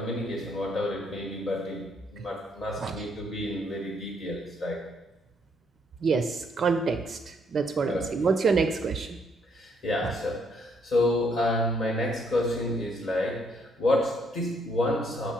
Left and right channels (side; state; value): both; normal; correlation 0.70